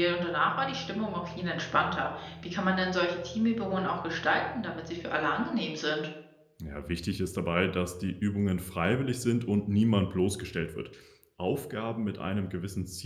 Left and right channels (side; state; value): both; identical; correlation 1.00